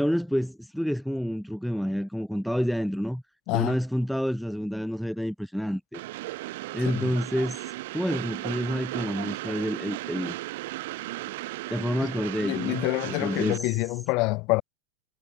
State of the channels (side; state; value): both; normal; correlation 0.67